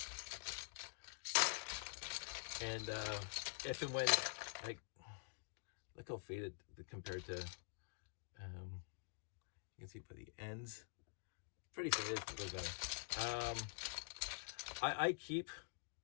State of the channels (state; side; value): silent; right; digital silence